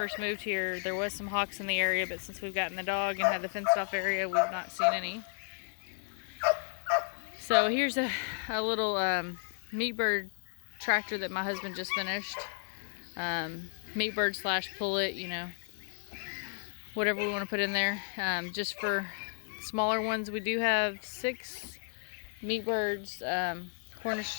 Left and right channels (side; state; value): right; silent; digital silence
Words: moved here, there was some hawks in the area, but since we've gotten the dog and had the fenced off area, we've not seen any. So here's a little meat bird tractor that my husband just finished. Meat bird / pullet, you know, whatever we want to put in there. Just for smaller ones, we do have 6 meat birds,